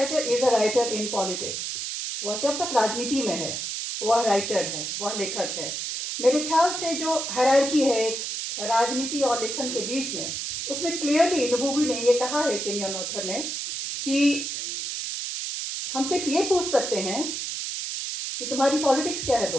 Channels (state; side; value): noise; right; hiss, 4 dB below the sound